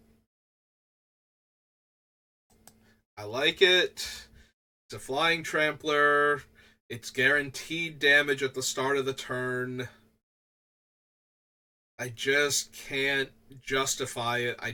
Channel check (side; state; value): both; identical; correlation 1.00